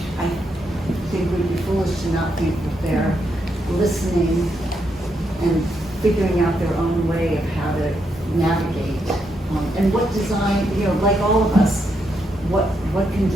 I think we'd be foolish to not think that they're listening and figuring out their own way of how to navigate. And what design, like all of us, what can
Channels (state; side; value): normal; both; correlation 0.80